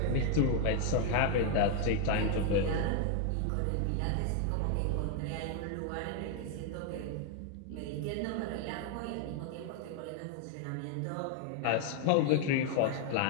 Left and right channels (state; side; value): different; both; correlation 0.00